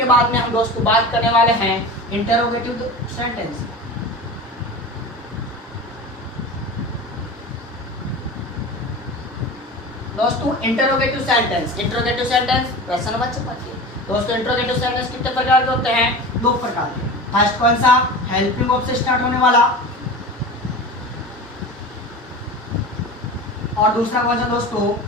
बाद में हम दोस्तों बात करने वाले हैं इंटरोगेटिव सेंटेंस। दोस्तों इंटरोगेटिव सेंटेंस, इंटरोगेटिव सेंटेंस प्रश्न नंबर 25। दोस्तों इंटरोगेटिव सेंटेंस कितने प्रकार के होते हैं, दो प्रकार के। फर्स्ट कौन सा, हेल्पिंग वर्ब से स्टार्ट होने वाला, और दूसरा कौन सा दोस्तों,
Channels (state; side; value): normal; both; correlation 0.32